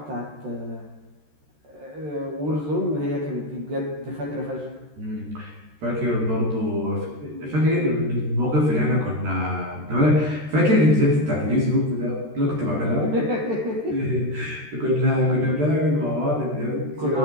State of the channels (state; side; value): late; left; 13 ms